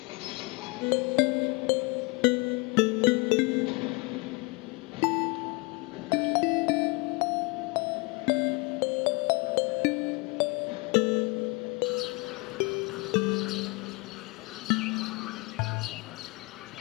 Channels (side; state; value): right; quieter; 27.8 dB